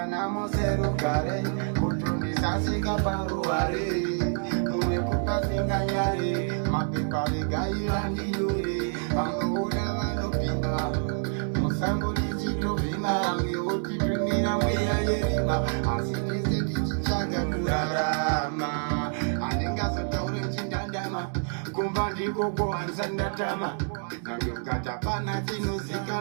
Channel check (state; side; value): silent; left; 58 dB below the other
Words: zero kare, kutundisa sika paruare, munekupa singanyare, mapepa vegaira ndiyore, vangoona vanopinga, musango lichitovhima, amweotitumira mweya yerima, asi tese tichichaga kurarama, handingazotaure chindandama, kumba ndiko kuhanza ndatama, nangokatapana